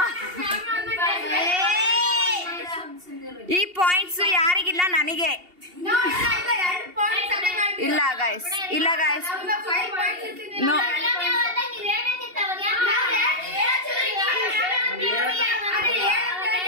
ಈ ಪಾಯಿಂಟ್ಸ್ ಯಾರಿಗಿಲ್ಲ, ನನಗೆ. ಇಲ್ಲ ಗೈಸ್, ಇಲ್ಲ ಗೈಸ್. ನೋ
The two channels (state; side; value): late; left; 2.8 ms